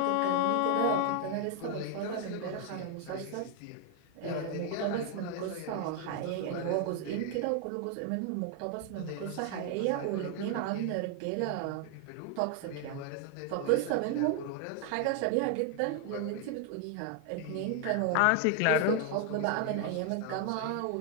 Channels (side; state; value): both; different; correlation 0.00